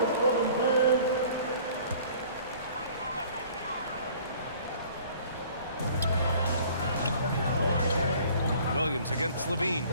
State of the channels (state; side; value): inverted; both; correlation -0.51